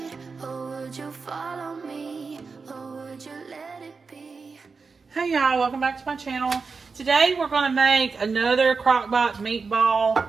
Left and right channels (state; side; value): quieter; left; 4.7 dB